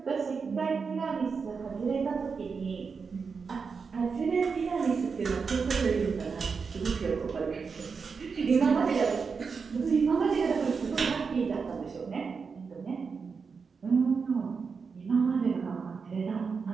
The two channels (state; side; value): quieter; left; 5.3 dB